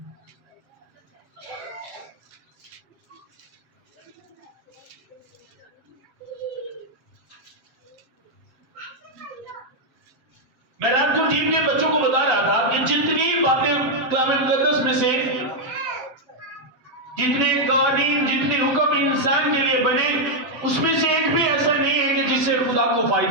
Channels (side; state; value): left; late; 7.5 ms